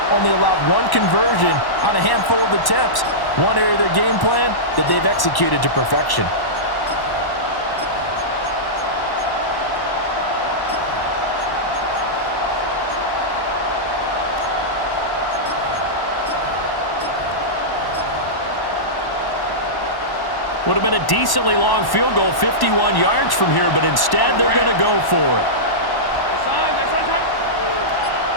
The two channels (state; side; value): late; right; 1.1 ms